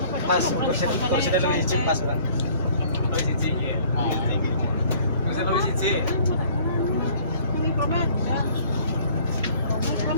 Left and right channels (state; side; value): inverted; both; correlation -0.54